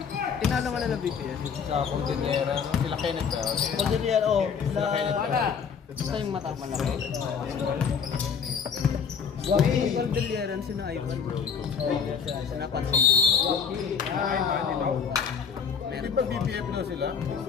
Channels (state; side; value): quieter; right; 6.5 dB